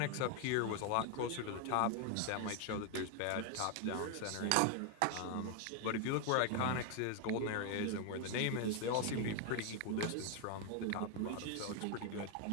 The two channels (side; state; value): both; different; correlation 0.00